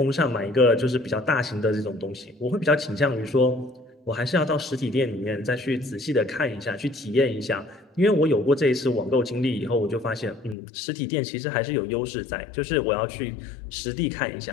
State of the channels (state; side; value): drops out; right; at 10.6 s